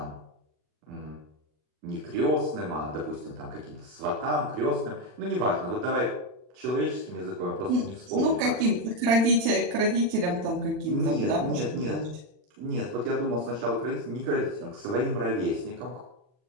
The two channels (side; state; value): left; late; 40 ms